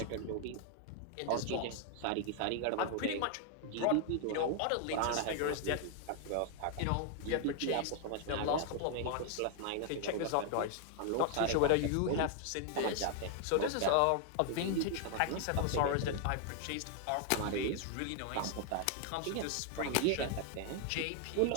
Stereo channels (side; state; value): both; different; correlation 0.00